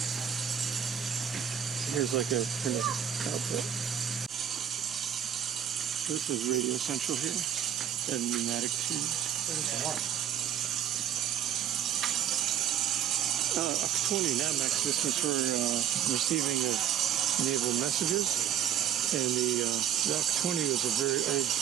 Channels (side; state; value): left; quieter; 9.4 dB